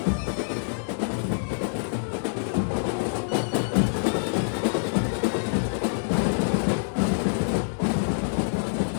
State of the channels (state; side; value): silent; right; digital silence